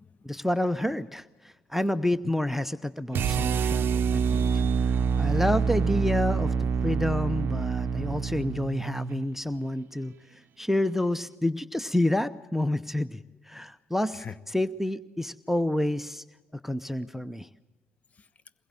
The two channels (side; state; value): both; normal; correlation 0.87